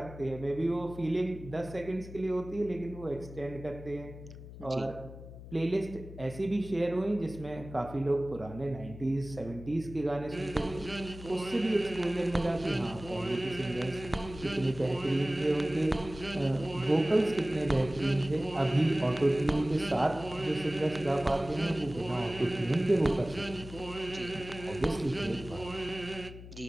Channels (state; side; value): noise; left; hum, 14 dB below the sound